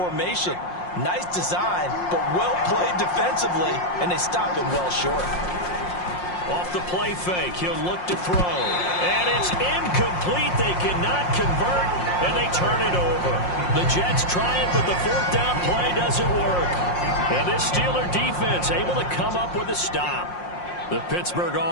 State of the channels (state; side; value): late; right; 5.6 ms